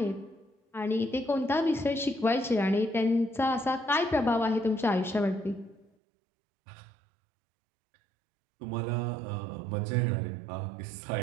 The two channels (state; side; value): drops out; left; at 5.9 s